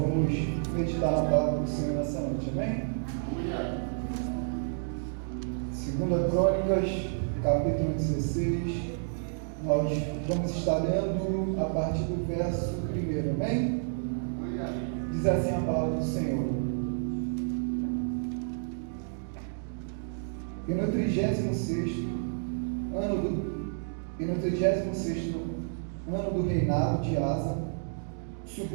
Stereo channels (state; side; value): silent; left; digital silence